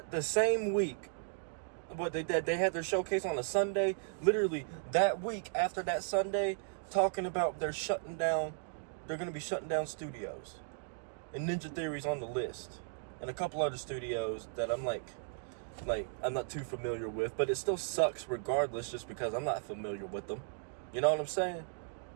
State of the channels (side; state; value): left; silent; digital silence